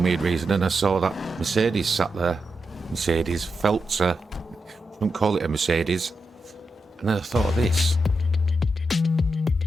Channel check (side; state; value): both; normal; correlation 0.87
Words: weird reason, and I saw that Mercedes sat there. Mercedes, feltzer. Don't call it a Mercedes. And then I thought of this.